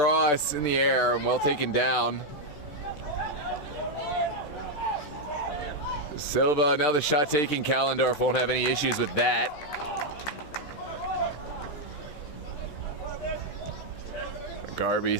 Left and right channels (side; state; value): right; late; 13 ms